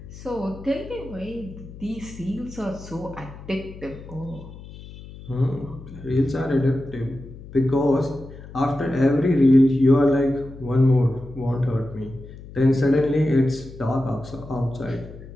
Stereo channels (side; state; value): left; noise; hum, 16 dB below the sound